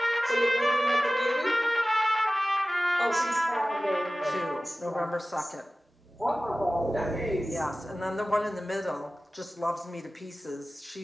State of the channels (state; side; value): normal; both; correlation 0.97